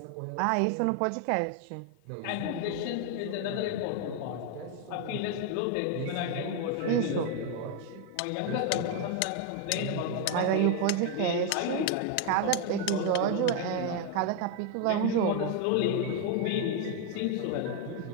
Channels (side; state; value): both; different; correlation 0.01